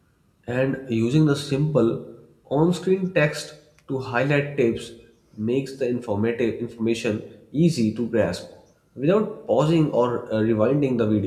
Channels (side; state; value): both; identical; correlation 1.00